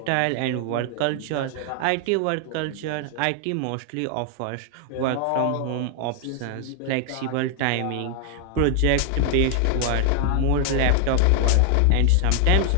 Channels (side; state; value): both; different; correlation 0.00